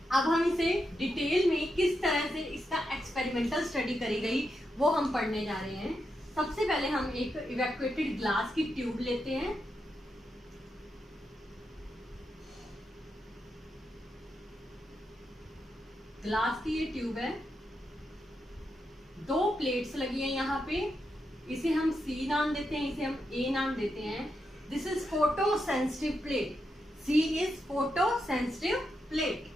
अब हम इसे डिटेल में किस तरह से इसका एक्सपेरिमेंटल स्टडी करी गई वो हम पढ़ने जा रहे हैं। सबसे पहले हम एक इवैक्यूएटेड ग्लास की ट्यूब लेते हैं। ग्लास की ये ट्यूब है, 2 प्लेट्स लगी हैं यहाँ पे, इसे हम C नाम देते हैं, इसे हम A नाम देते हैं। This is photo sensitive plate, C is photo sensitive plate.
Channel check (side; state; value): both; normal; correlation 0.85